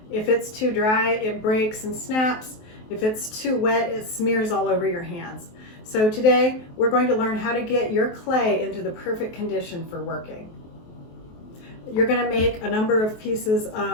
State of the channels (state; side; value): late; right; 23 ms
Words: If it's too dry, it breaks and snaps. If it's too wet, it smears all over your hands. So today, we're going to learn how to get your clay into the perfect condition for working. You're going to make a number of pieces